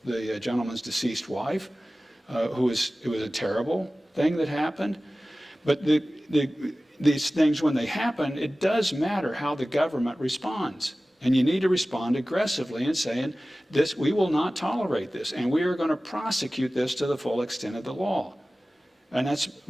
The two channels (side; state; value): both; normal; correlation 0.97